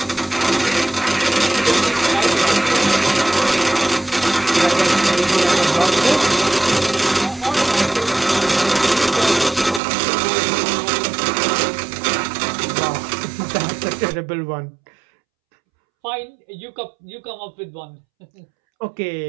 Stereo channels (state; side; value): drops out; left; at 9.8 s